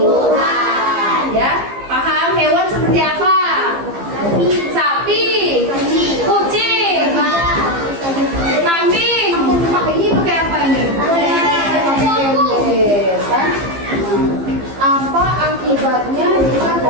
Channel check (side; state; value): left; late; 15 ms